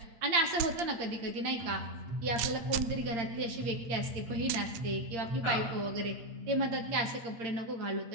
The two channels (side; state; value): left; late; 8.7 ms